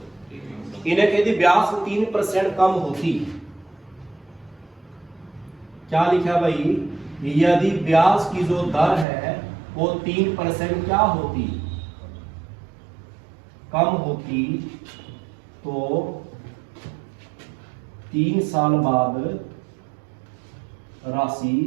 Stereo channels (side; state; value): left; drops out; at 9.1 s